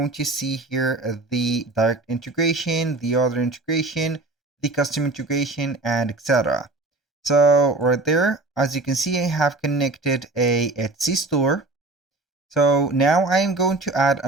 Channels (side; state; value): left; quieter; 3.0 dB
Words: to see here the direct integration, the other integration, the custom integration, and etc. So right there, as you can see, I have connected a Etsy store. So now I am going to add